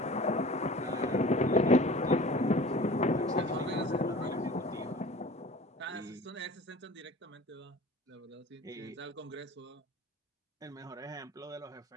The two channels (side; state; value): both; normal; correlation 0.42